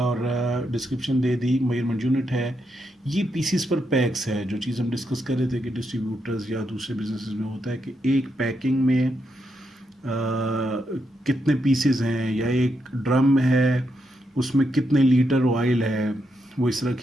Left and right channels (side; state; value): both; normal; correlation 0.81